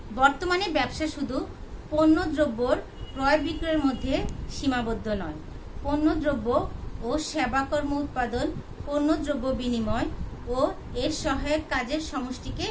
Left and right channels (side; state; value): both; identical; correlation 1.00